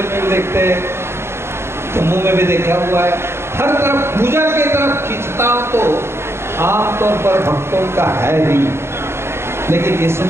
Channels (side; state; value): left; late; 0.12 ms